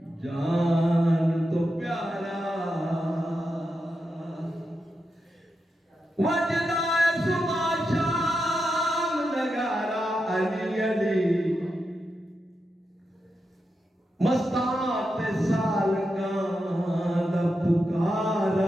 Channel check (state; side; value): normal; both; correlation 0.88